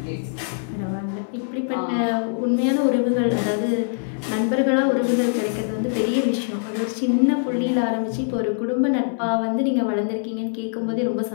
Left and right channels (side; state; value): right; silent; 63 dB below the other